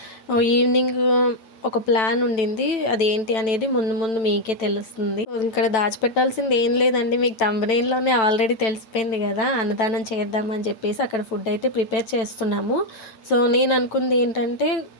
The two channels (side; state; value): right; late; 9.1 ms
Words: ఈవినింగ్ ఒక ప్లాన్ ఉండింది, అదేంటి అనేది ముందు మీకే తెలుస్తుంది. ఇక్కడ దాచిపెట్టాల్సింది ఏం లేదండి, మీకు థంబ్నెయిల్లోనే ఆల్రెడీ తెలిసిపోయింది కదా. అన్నదానం చేద్దామని చెప్పేసి అక్కడ ఫుడ్ అయితే ప్రిపేర్ చేస్తున్నాము. సో నేను అనుకుంది ఏంటంటే,